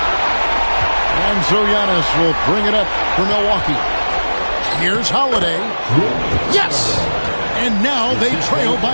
And so Giannis will bring it up for Milwaukee. Here's Holiday. Yes! And now they trail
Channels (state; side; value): inverted; both; correlation -1.00